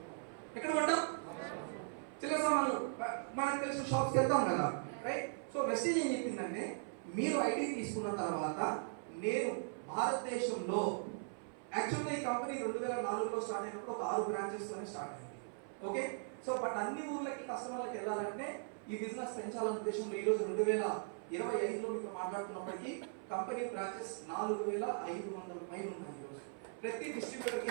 ఎక్కడ కొంటాం? చిల్లర సామాన్లు మనకు తెలిసిన షాప్స్కి వెళ్తాం కదా. రైట్? సో వెస్టీజ్ ఏం చెప్పిందంటే మీరు ఐడి తీసుకున్న తర్వాత నేను భారతదేశంలో యాక్చువల్గా ఈ కంపెనీ 2004లో స్టార్ట్ అయినప్పుడు ఒక 6 బ్రాంచెస్తోనే స్టార్ట్ అయింది. ఓకే, సో బట్ అన్ని ఊర్లకి కస్టమర్లకి వెళ్ళాలంటే ఈ బిజినెస్ పెంచాలనే ఉద్దేశంలో ఈరోజు 2025లో మీతో మాట్లాడుతున్నప్పటికీ కంపెనీ బ్రాంచెస్ 4500 పైన ఉన్నాయి. ఈరోజు ప్రతి డిస్ట్రిబ్యూటర్ కి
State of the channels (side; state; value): left; silent; 52 dB below the other